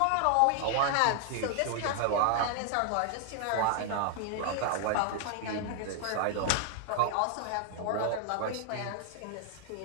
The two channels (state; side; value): different; both; correlation 0.00